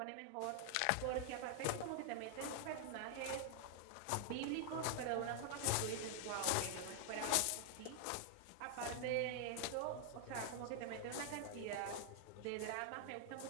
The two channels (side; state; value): both; different; correlation 0.00